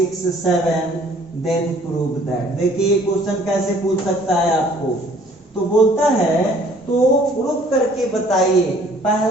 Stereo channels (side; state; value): both; normal; correlation 0.57